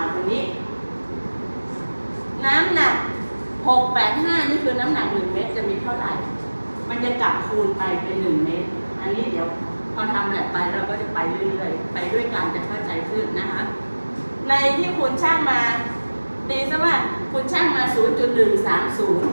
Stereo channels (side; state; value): both; inverted; correlation -1.00